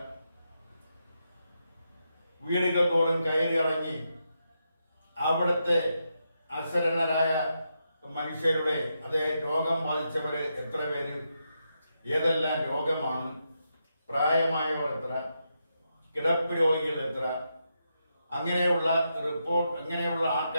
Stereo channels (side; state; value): both; inverted; correlation -0.84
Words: വീടുകൾ തോറും കയറിയിറങ്ങി അവിടുത്തെ അശരണരായ മനുഷ്യരുടെ അതേ രോഗം ബാധിച്ചവര് എത്ര പേര്, ഏതെല്ലാം രോഗമാണ്, പ്രായമായവർ എത്ര, കിടപ്പ് രോഗികൾ എത്ര, അങ്ങനെയുള്ള റിപ്പോർട്ട്, അങ്ങനെയുള്ള